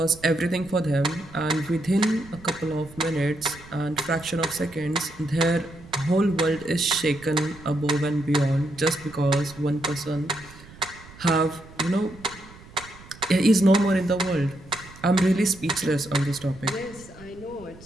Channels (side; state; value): right; noise; rumble, 20 dB below the sound